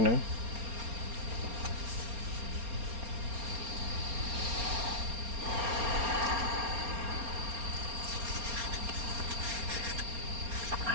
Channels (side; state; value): left; late; 4.3 ms